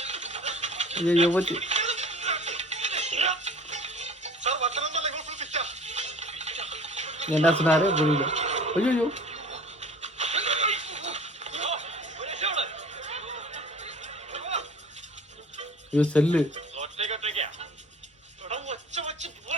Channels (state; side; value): normal; both; correlation 0.45